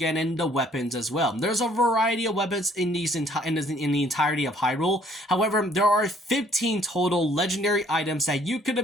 the weapons as well. There's a variety of weapons in the entirety of Hyrule. However, there are 15 total legendary items that you could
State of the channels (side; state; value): both; normal; correlation 0.61